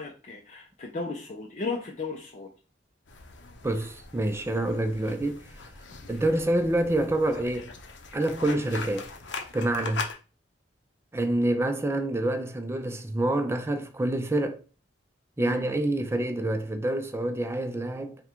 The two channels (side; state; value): both; normal; correlation 0.80